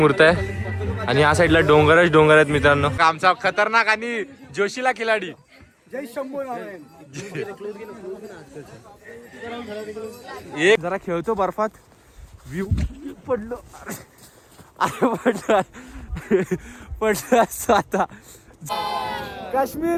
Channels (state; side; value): identical; both; correlation 1.00